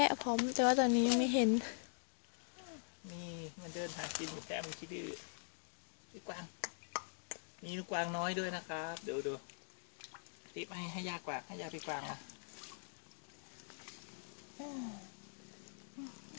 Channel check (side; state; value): right; silent; digital silence